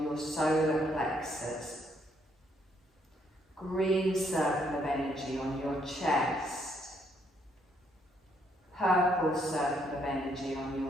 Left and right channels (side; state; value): both; normal; correlation 0.71